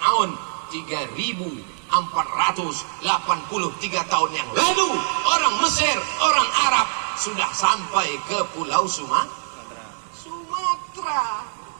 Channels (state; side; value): silent; left; digital silence